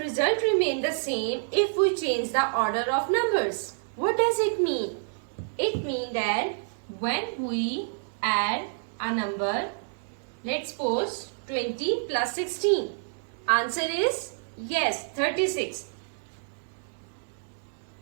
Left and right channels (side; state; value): left; silent; digital silence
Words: result remain the same if we change the order of numbers. What does it mean? It means that when we add a number, let's suppose 20 plus 16. Answer is yes, 36.